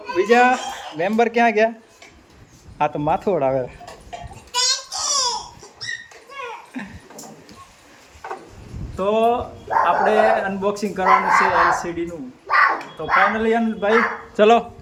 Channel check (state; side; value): identical; both; correlation 1.00